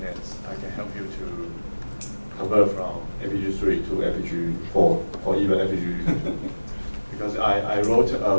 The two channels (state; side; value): inverted; both; correlation -1.00